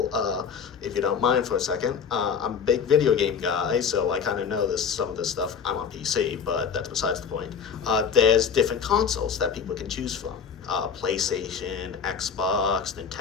if you don't mind for a second, I'm a big video game guy, so I kind of know some of this stuff. I'm on PC, but that's besides the point. There's different consoles that people can choose from. PlayStation, Xbox,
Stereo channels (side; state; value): right; quieter; 6.7 dB